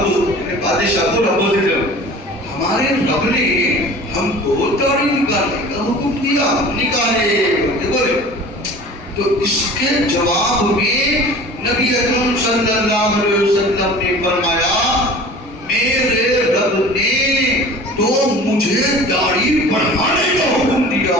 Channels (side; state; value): both; normal; correlation 0.42